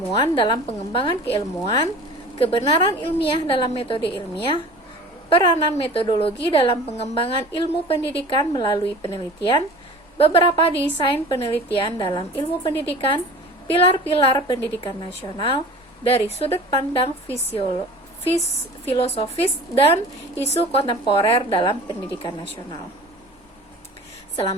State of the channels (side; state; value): both; normal; correlation 0.40